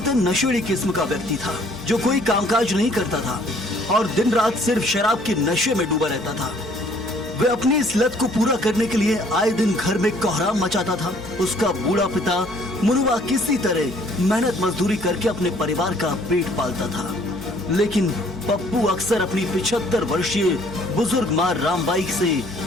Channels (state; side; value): normal; both; correlation 0.60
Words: नशेड़ी किस्म का व्यक्ति था, जो कोई कामकाज नहीं करता था और दिन रात सिर्फ शराब के नशे में डूबा रहता था। वह अपनी इस लत को पूरा करने के लिए आए दिन घर में कोहराम मचाता था। उसका बूढ़ा पिता मुनुआ किसी तरह मेहनत मजदूरी करके अपने परिवार का पेट पालता था, लेकिन पप्पू अक्सर अपनी 75 वर्षीय बुजुर्ग मां रामबाई से